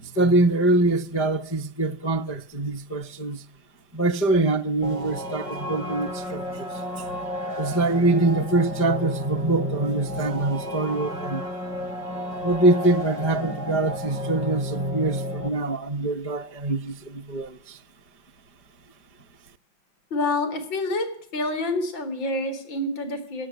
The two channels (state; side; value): late; right; 5.1 ms